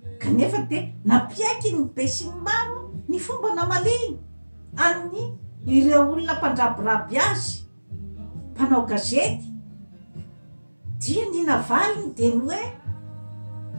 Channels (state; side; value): inverted; both; correlation -1.00